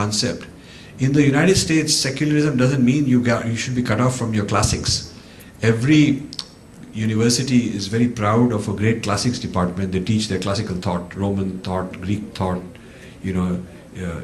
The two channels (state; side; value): identical; both; correlation 1.00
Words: In the United States, secularism doesn't mean you should be cut off from your classics. Every university is very proud of a great classics department. They teach their classical thought, Roman thought, Greek thought,